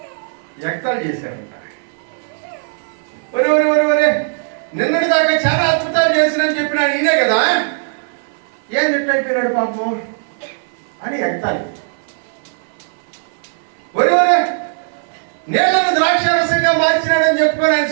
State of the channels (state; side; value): silent; left; 61 dB below the other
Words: ఎక్తాలు చేశారంట. ఒరే ఒరే ఒరే ఒరే, నిన్నటి దాకా చాలా అద్భుతాలు చేసినని చెప్పినాడు ఈయనే కదా, ఏం అయిపోయినాడు పాపం అని ఎక్తాలి. ఒరే ఒరే, నీళ్లను ద్రాక్షారసంగా మార్చినాడని చెప్పుకొని ఆయన